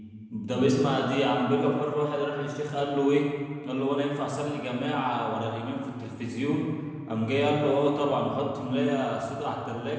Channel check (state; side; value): identical; both; correlation 1.00